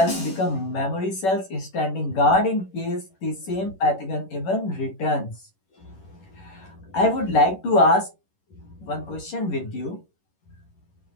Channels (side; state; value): right; late; 11 ms